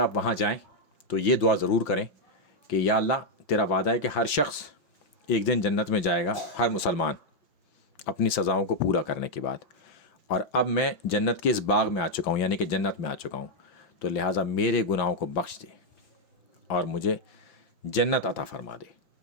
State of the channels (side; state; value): right; late; 5.9 ms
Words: وہاں جائیں تو یہ دعا ضرور کریں کہ یا اللہ، تیرا وعدہ ہے کہ ہر شخص ایک دن جنت میں جائے گا، ہر مسلمان اپنی سزاؤں کو پورا کرنے کے بعد، اور اب میں جنت کے اس باغ میں آ چکا ہوں، یعنی کہ جنت میں آ چکا ہوں، تو لہٰذا میرے گناہوں کو بخش دے اور مجھے جنت عطا فرما دے۔